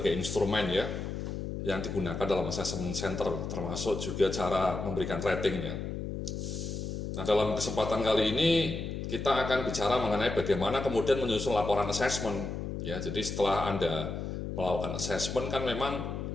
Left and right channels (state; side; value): noise; left; hum, 5 dB below the sound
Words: instrumen ya yang digunakan dalam assessment center, termasuk juga cara memberikan ratingnya. Nah, dalam kesempatan kali ini kita akan bicara mengenai bagaimana kemudian menyusun laporan assessment. Ya, jadi setelah Anda melakukan assessment kan memang